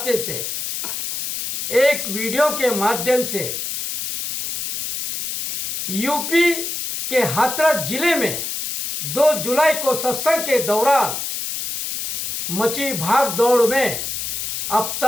से एक वीडियो के माध्यम से यूपी के हाथरस जिले में 2 जुलाई को सत्संग के दौरान मची भाग दौड़ में अब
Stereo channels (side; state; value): left; noise; hiss, 4 dB below the sound